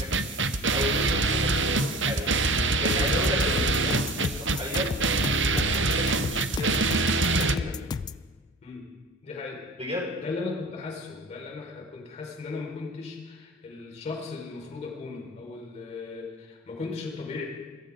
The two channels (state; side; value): normal; both; correlation 0.39